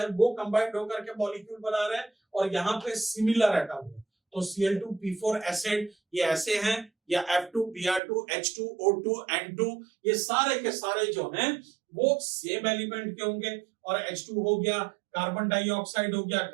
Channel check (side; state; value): left; drops out; at 8.0 s